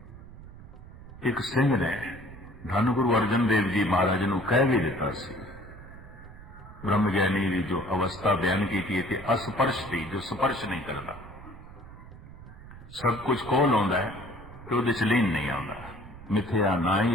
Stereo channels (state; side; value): noise; right; rumble, 17 dB below the sound